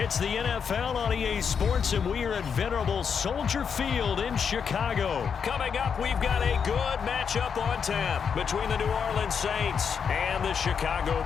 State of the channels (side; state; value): right; quieter; 6.7 dB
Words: the NFL on EA Sports, and we are at venerable Soldier Field in Chicago. Coming up, we've got a good matchup on tap between the New Orleans Saints and the Chicago